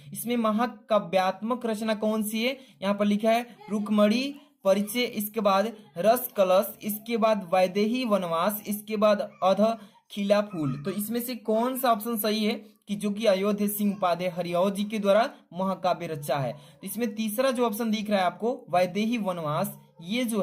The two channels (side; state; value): both; identical; correlation 1.00